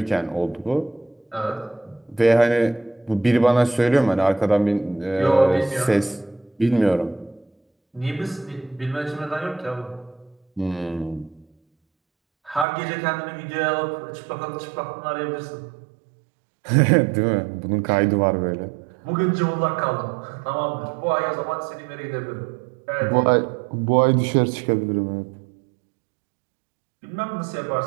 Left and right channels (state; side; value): drops out; left; at 12.7 s